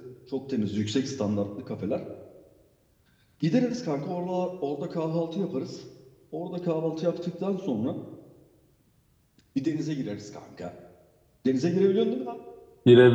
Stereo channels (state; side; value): identical; both; correlation 1.00